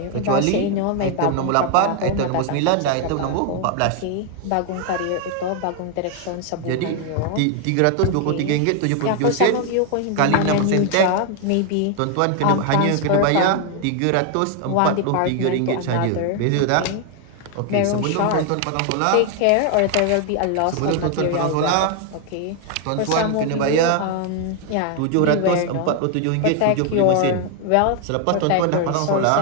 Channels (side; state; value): both; different; correlation 0.00